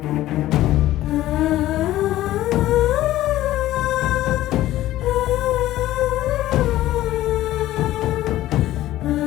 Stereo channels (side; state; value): right; quieter; 14.8 dB